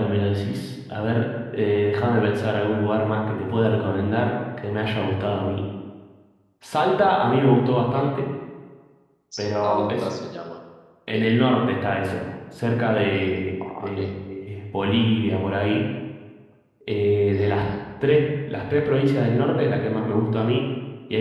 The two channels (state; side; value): identical; both; correlation 1.00